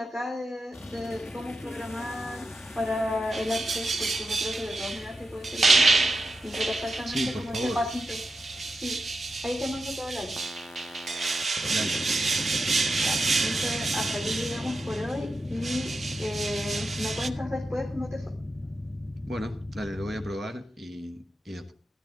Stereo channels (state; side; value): normal; both; correlation 0.88